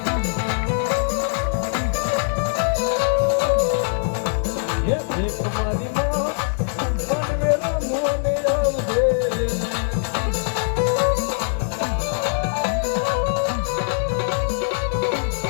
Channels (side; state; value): right; silent; digital silence